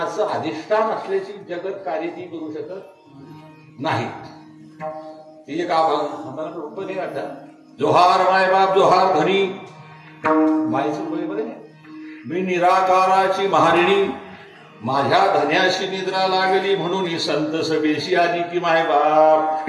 अधिष्ठान असल्याची जगत कार्य ती करू शकत नाही. ती एक आम्हाला रूप नाही वाटत. जोहार मायबाप जोहार धनी. मायचं बरोबर आहे. मी निराकाराची महारिणी माझ्या धन्याशी निद्रा लागली म्हणून ही संत सभेशी आली की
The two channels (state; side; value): identical; both; correlation 1.00